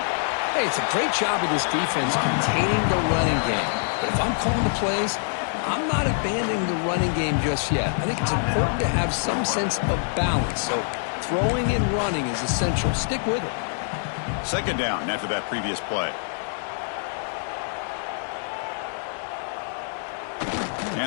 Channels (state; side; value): silent; right; digital silence